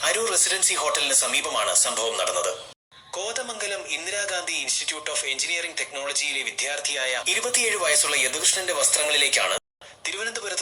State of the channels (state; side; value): identical; both; correlation 1.00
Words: അരൂർ റെസിഡൻസി ഹോട്ടലിന് സമീപമാണ് സംഭവം നടന്നത്. Kothamangalam Indira Gandhi institute of engineering ടെക്നോളജിയിലെ വിദ്യാർത്ഥിയായ 27 വയസ്സുള്ള യദുകൃഷ്ണന്റെ വസ്ത്രങ്ങളിലേക്കാണ്